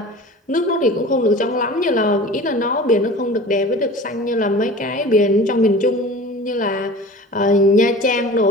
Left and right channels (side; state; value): both; normal; correlation 0.39